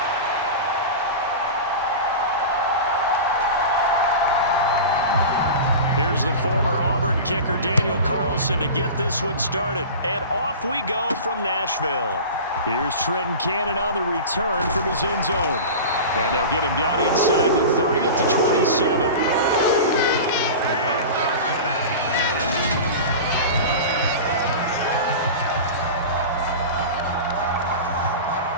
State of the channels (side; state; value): both; inverted; correlation -0.31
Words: Here's the former Auburn kicker Daniel Carlson to get this one started. And off we go from Nashville. Here's Trenton Cannon on the return from his end zone. And they'll get him down inside the 30 at the 27.